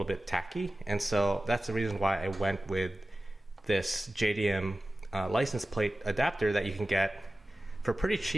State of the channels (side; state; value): both; normal; correlation 0.95